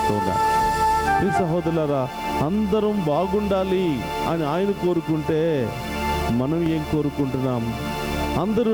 ఈ సహోదరులారా, అందరం బాగుండాలి అని ఆయన కోరుకుంటే మనం ఏం కోరుకుంటున్నాం? అందరూ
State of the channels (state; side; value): identical; both; correlation 1.00